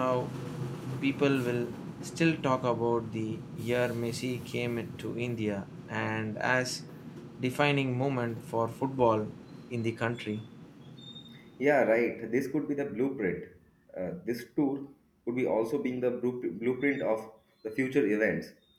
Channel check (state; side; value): identical; both; correlation 1.00